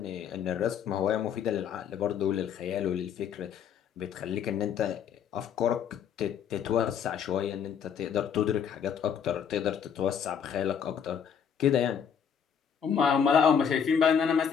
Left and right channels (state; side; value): quieter; right; 7.7 dB